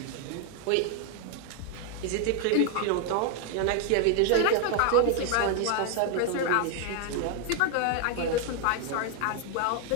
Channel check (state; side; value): different; both; correlation 0.00